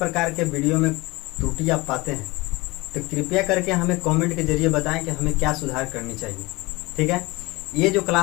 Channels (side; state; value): right; quieter; 22.7 dB